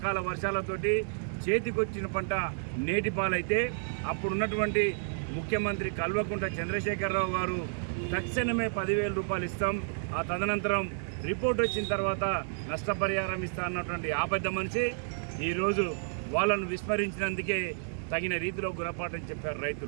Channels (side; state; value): left; silent; digital silence